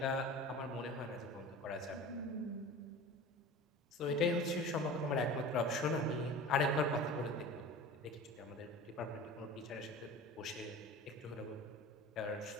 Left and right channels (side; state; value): both; normal; correlation 0.36